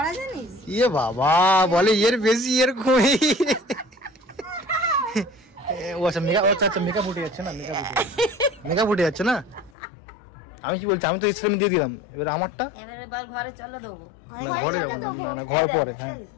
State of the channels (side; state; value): right; drops out; at 9.7 s